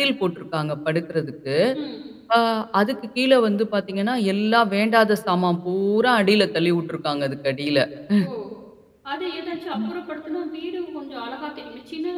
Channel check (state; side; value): identical; both; correlation 1.00